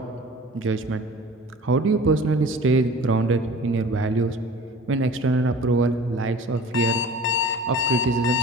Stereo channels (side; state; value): both; normal; correlation 0.42